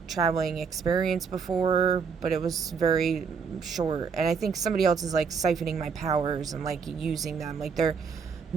traveling experience before, but it was very short, and I think somebody else is like siphoning my powers and like using them, like they're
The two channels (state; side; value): quieter; left; 5.9 dB